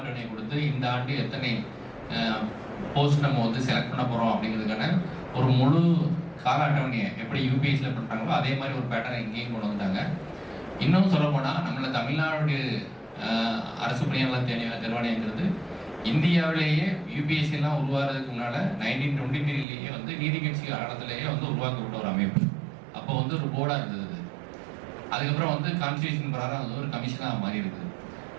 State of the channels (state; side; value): drops out; left; at 19.7 s